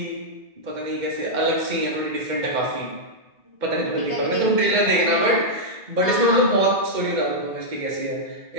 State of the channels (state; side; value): late; left; 2.1 ms